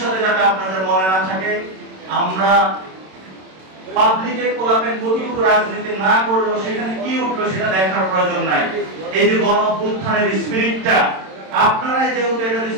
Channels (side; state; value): left; late; 27 ms